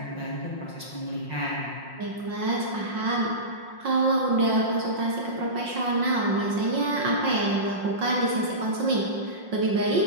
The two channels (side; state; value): left; late; 5.6 ms